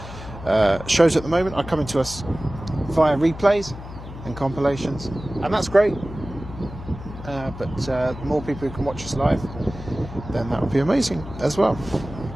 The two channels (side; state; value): left; noise; hum, 12 dB below the sound